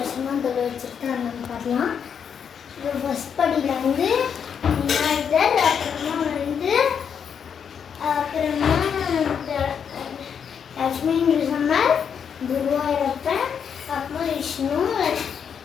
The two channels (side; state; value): right; quieter; 7.4 dB